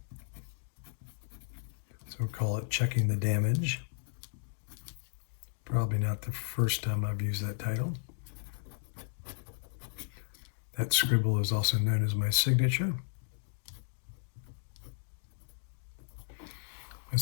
So we'll call it Checking the Damage. Probably not the first time I've used that title. That scribble is also known as my signature. My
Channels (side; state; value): right; silent; digital silence